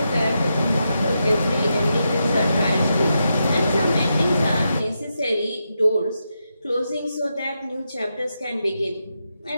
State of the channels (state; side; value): inverted; both; correlation -0.85